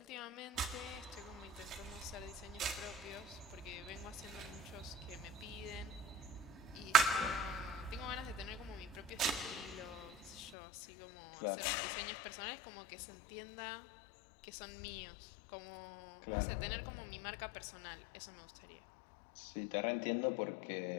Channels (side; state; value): right; drops out; at 10.5 s